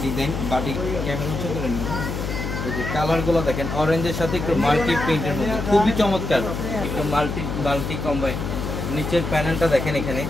ডিজাইন। বাটিক ক্যামেরা হচ্ছে করে নিন। এই যে কালারগুলো দেখেন, অরেঞ্জের সাথে একটু মাল্টি প্রিন্টের মধ্যে, খুবই চমৎকার। একটু মাল্টি কম্বাইন। নিচের প্যানেলটা দেখেন, এখানে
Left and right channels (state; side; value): noise; left; hum, 4 dB below the sound